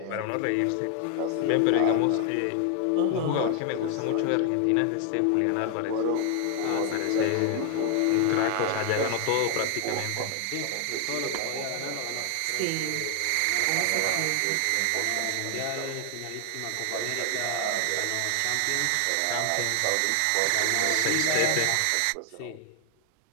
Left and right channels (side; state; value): both; different; correlation 0.00